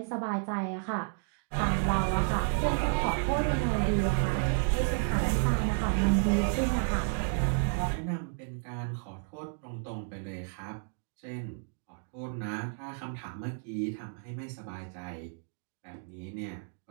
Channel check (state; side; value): silent; left; 57 dB below the other